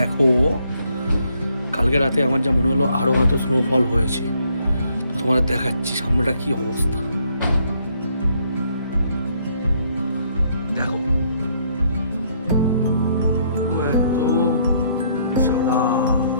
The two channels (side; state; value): both; inverted; correlation -0.69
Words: কালকে রাতে আমার যা মনে হলো আরও হয়তো স্নোফল হয়েছে, তো তোমাদের দেখাচ্ছি সামনেটা কি অবস্থা। দেখো পুরো একদম সাদা।